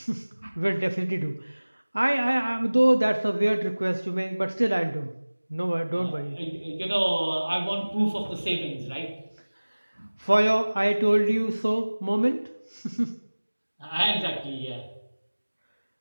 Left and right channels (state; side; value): inverted; both; correlation -1.00